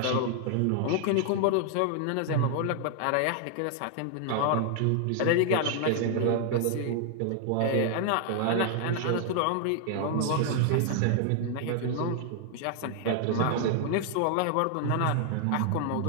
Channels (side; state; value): both; different; correlation 0.00